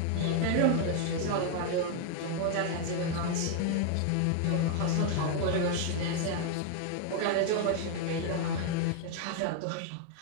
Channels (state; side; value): different; both; correlation 0.00